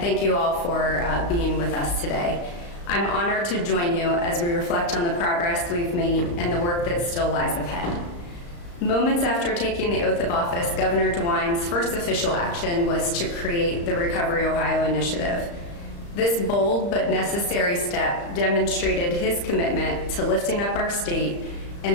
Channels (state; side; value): late; right; 35 ms